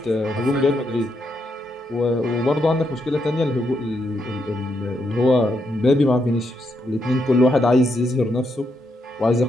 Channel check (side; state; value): both; normal; correlation 0.80